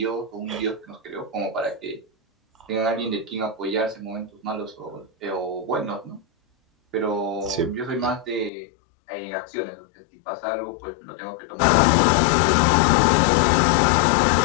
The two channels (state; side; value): drops out; right; at 8.5 s